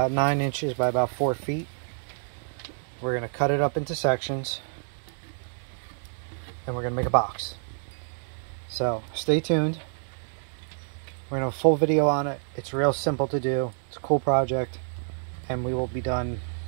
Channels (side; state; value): left; silent; digital silence